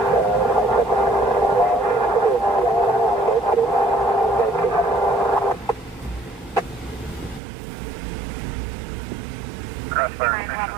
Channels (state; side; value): drops out; left; at 7.4 s